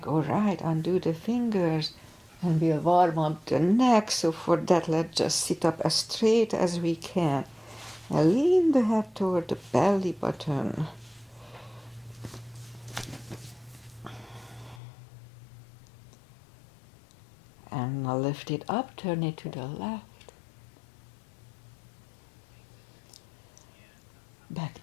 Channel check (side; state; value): right; drops out; at 14.8 s